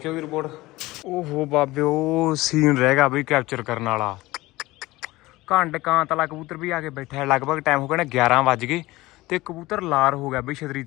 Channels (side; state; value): right; quieter; 19.2 dB